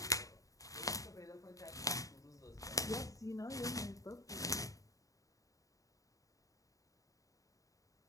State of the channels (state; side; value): late; right; 0.16 ms